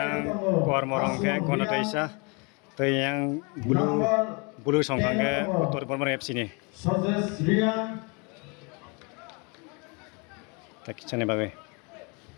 kuar morong ke Konatis to yang bulu songkang ke Uttar Bormor FC ni. Tak kicane bagai.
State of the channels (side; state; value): right; quieter; 31.7 dB